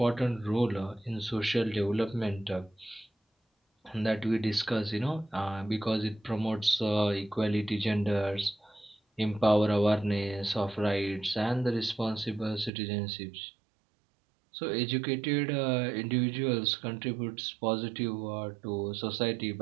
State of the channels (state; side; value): drops out; left; at 12.7 s